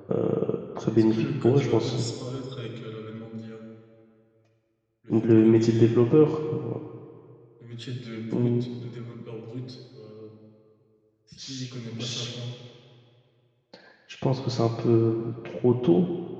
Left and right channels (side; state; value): both; identical; correlation 1.00